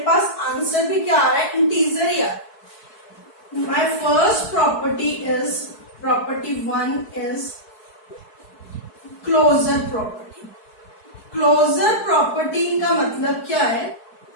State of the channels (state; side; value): late; right; 4.6 ms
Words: पास आंसर भी क्या आ रहा है? इंटीजर ही आ रहा है. My first property is property 1 is closure property. Closure property का मतलब क्या है?